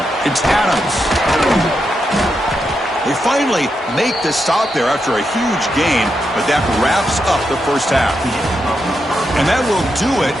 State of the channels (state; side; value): normal; both; correlation 0.84